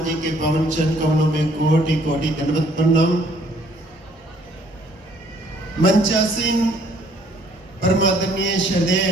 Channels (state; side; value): normal; both; correlation 0.62